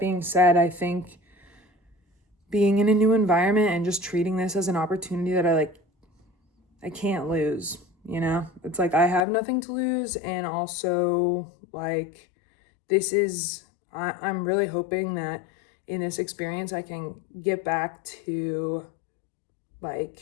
said, I think being in a new environment and just treating this as an opportunity that I can't lose, It's like I have nothing to lose, and also like I'm really hoping that in this experience I can get back to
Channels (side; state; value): right; drops out; at 9.2 s